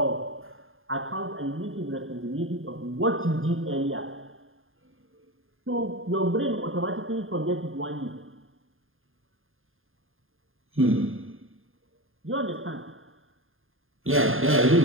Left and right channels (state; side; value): late; left; 0.59 ms